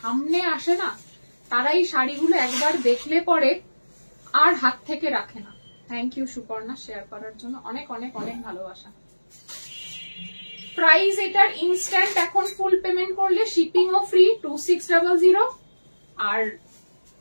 আসে না তারাই শাড়িগুলো একবার দেখলে পরে আর হাত থেকে রাখে না। থ্যাংক ইউ সুপর্ণা শেয়ার করার জন্য, অনেক অনেক অনেক ভালোবাসা। প্রাইস এটার ইনস্ট্যান্ট এখন ফুল পেমেন্ট করলে শিপিং ও ফ্রি 2600, আর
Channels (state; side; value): inverted; both; correlation -1.00